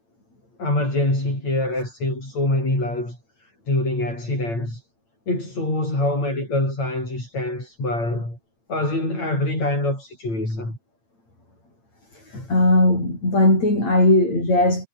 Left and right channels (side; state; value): right; late; 8.8 ms